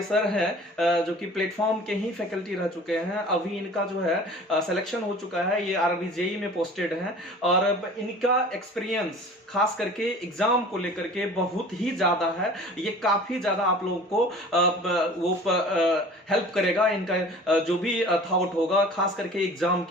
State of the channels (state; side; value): normal; both; correlation 0.44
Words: सर हैं जो कि प्लेटफॉर्म के ही फैकल्टी रह चुके हैं, अभी इनका जो है सिलेक्शन हो चुका है, ये आरबी जेई में पोस्टेड हैं और इनका एक्सपीरियंस खास करके एग्जाम को लेकर के बहुत ही ज्यादा है। ये काफी ज्यादा आप लोगों को वो हेल्प करेगा, इनका जो भी थॉट होगा खास करके एग्जाम